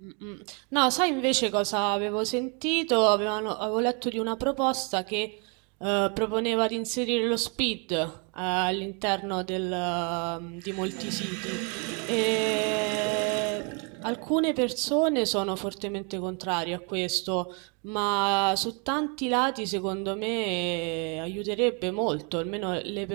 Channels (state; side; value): quieter; left; 35.4 dB